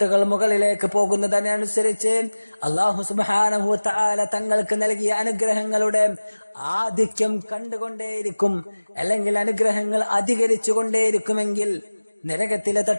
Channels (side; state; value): both; inverted; correlation -1.00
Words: മുകളിലേക്ക് പോകുന്നതിനനുസരിച്ച് അല്ലാഹു സുബ്ഹാനഹു വ തആല തങ്ങൾക്ക് നൽകിയ അനുഗ്രഹങ്ങളുടെ ആധിക്യം കണ്ടുകൊണ്ടേയിരിക്കും, അല്ലെങ്കിൽ അനുഗ്രഹങ്ങൾ അധികരിച്ചു കൊണ്ടേയിരിക്കുമെങ്കിൽ നരകത്തിലെ